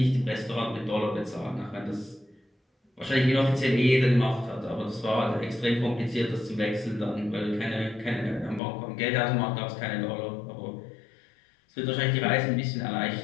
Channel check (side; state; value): right; drops out; at 8.6 s